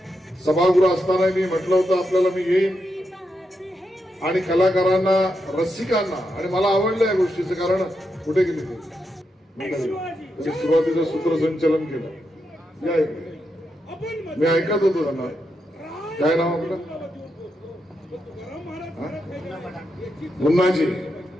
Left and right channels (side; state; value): both; normal; correlation 0.84